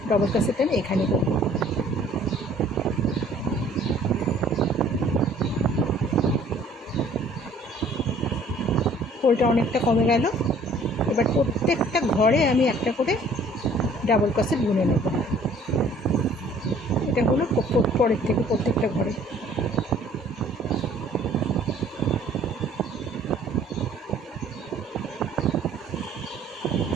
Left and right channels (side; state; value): both; normal; correlation 0.55